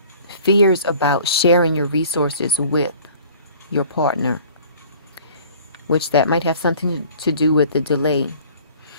fears about sharing your resources with your partner, which that might have something to do with the delay.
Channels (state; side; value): inverted; both; correlation -0.49